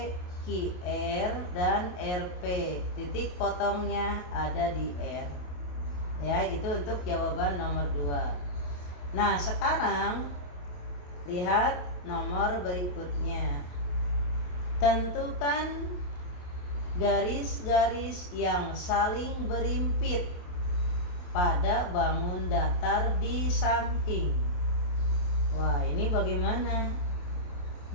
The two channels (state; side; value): late; right; 28 ms